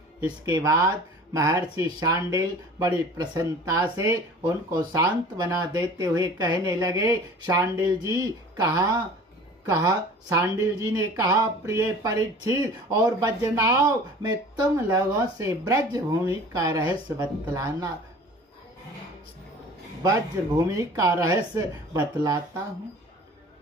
इसके बाद महर्षि शांडिल बड़ी प्रसन्नता से उनको शांत बना देते हुए कहने लगे, शांडिल जी ने कहा, प्रिय परीक्षित और वज्रनाभ, मैं तुम लोगों से ब्रज भूमि का रहस्य बतलाता हूँ,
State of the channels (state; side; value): normal; both; correlation 0.44